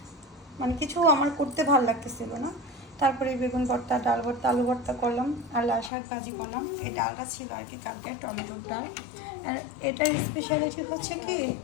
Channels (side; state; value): right; drops out; at 5.9 s